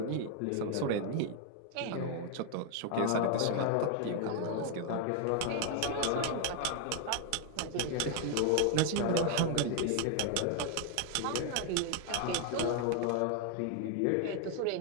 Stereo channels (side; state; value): both; different; correlation 0.00